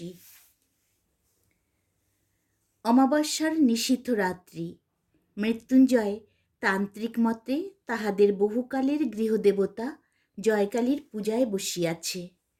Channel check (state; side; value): identical; both; correlation 1.00